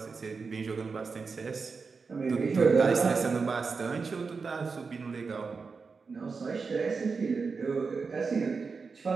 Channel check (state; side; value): quieter; left; 4.8 dB